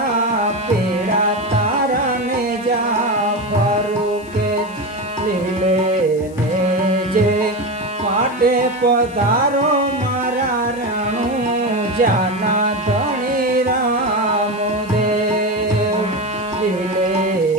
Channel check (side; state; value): left; noise; hiss, 25 dB below the sound